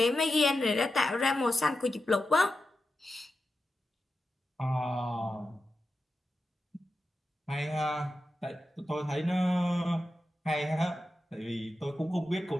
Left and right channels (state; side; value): normal; both; correlation 0.90